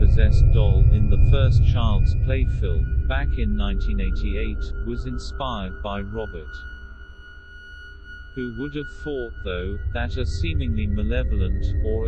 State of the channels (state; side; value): identical; both; correlation 1.00